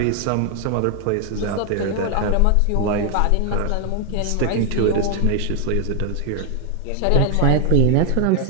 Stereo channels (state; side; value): different; both; correlation 0.00